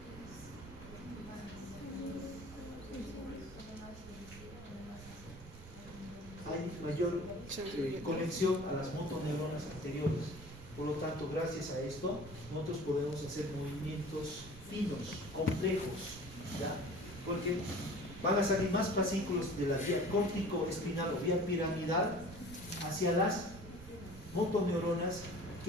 Hay mayor conexión a las motoneuronas anteriores. Por lo tanto, gracias a esto, nosotros podemos hacer movimientos finos, complejos, ¿ya? Porque van a salir más fascículos de la vía córtico-espinal o vía piramidal hacia las motoneuronas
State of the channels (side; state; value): right; noise; rumble, 16 dB below the sound